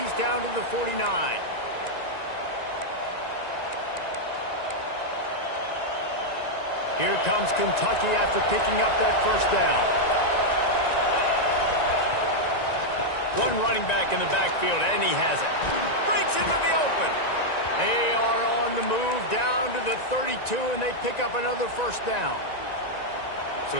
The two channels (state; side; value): late; right; 1.9 ms